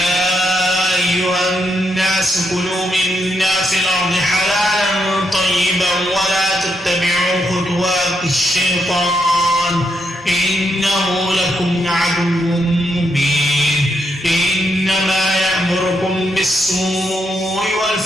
أيها الناس كلوا مما في الأرض حلالا طيبا ولا تتبعوا خطوات الشيطان إنه لكم عدو مبين إنما يأمركم بالسوء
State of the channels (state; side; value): normal; both; correlation 0.79